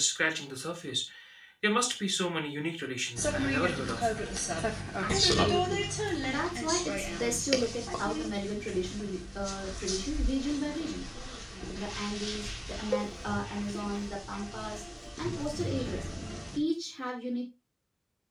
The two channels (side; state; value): both; identical; correlation 1.00